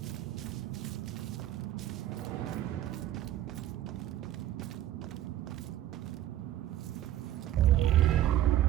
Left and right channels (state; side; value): quieter; left; 12.7 dB